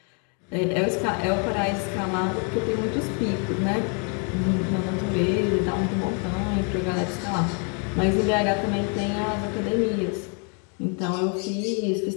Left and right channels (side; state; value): right; quieter; 38.3 dB